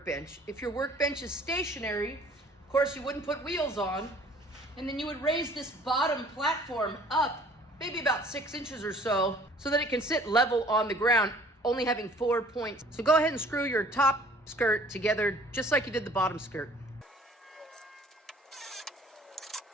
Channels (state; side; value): normal; both; correlation 0.53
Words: If your workbench is stationary, of course you wouldn't put wheels on, and then you would raise this bottom platform up maybe about 6 inches or so that it can sit level on the ground, only having 4 points. So go ahead and screw your top skirt together just like you did the bottom skirt.